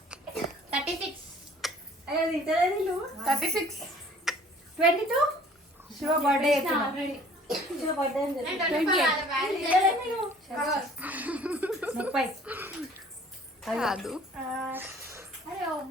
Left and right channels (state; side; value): normal; both; correlation 0.53